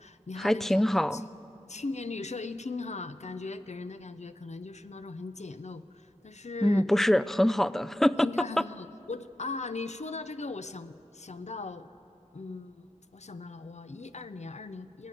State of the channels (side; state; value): both; normal; correlation 0.92